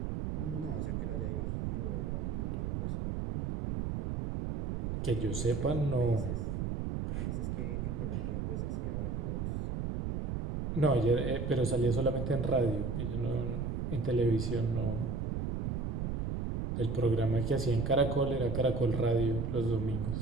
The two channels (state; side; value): noise; right; rumble, 1 dB below the sound